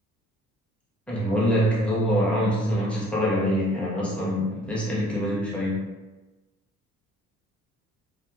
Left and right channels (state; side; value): normal; both; correlation 0.57